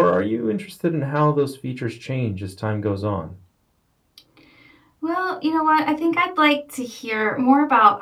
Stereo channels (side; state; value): both; identical; correlation 1.00